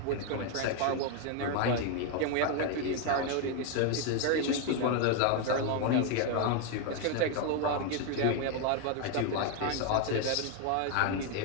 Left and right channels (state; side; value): different; both; correlation 0.01